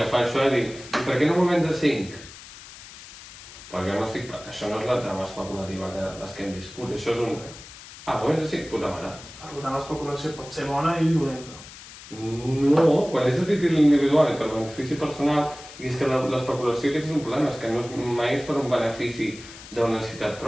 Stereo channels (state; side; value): noise; left; hiss, 17 dB below the sound